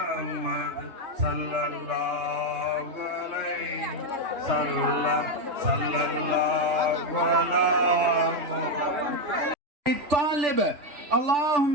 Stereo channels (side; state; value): left; late; 3.4 ms